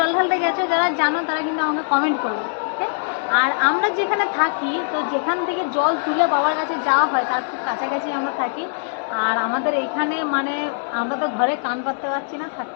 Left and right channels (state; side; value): silent; right; digital silence